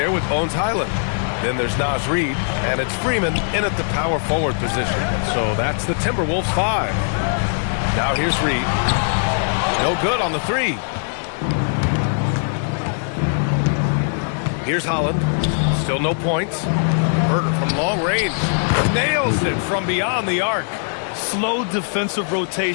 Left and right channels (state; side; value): silent; right; digital silence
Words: with Bones Highland. Then there's Naz Reid, and it's Freeman in at the power forward position. So that's the Timberwolves 5. Now here's Reid. No good on the 3. Here's Holland. Still no points. Herter from long range. Nails it from beyond the arc. Slow defensive